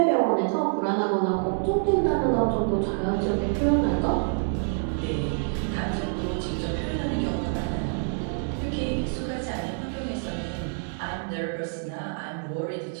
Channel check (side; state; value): left; silent; 56 dB below the other